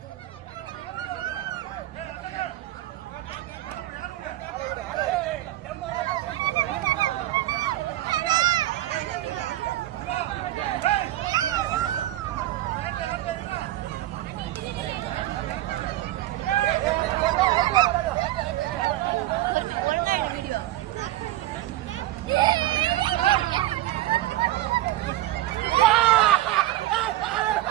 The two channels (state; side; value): quieter; left; 15.0 dB